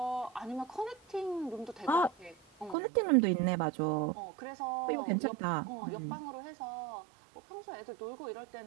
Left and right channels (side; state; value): left; drops out; at 2.8 s